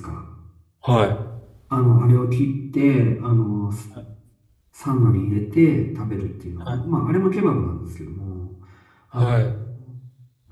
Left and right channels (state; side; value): identical; both; correlation 1.00